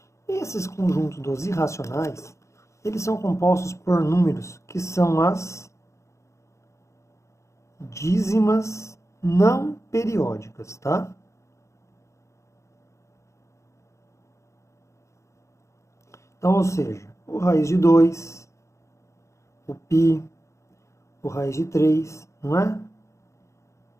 Esses conjuntos dos irracionais, eles são compostos por números que são as dízimas não periódicas, tá? Então, ou seja, o raiz de 2, o π, o raiz de 3, não é?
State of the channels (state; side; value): late; right; 0.14 ms